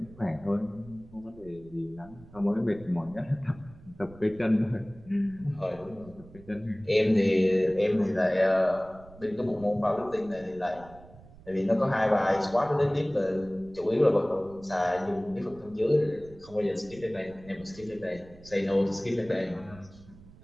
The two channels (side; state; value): right; noise; rumble, 21 dB below the sound